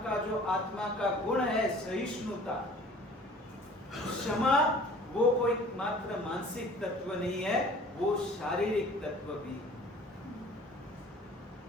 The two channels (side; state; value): both; normal; correlation 0.49